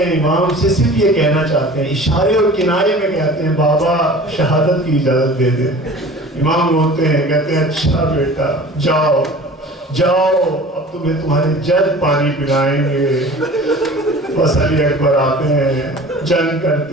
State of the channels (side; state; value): both; normal; correlation 0.42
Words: امام سے صرف یہ کہنا چاہتے ہیں، اشارے اور کنارے میں کہتے ہیں بابا شہادت کی اجازت دے دے. امام روتے ہیں، کہتے ہیں اچھا بیٹا جاؤ اب تمہیں تمہارے جد پانی پلائیں گے. بس علی اکبر آتے ہیں، جنگ